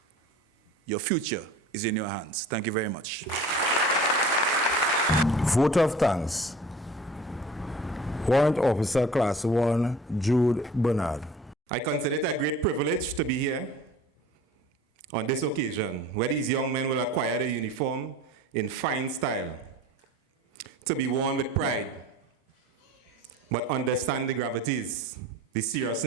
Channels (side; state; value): both; normal; correlation 0.43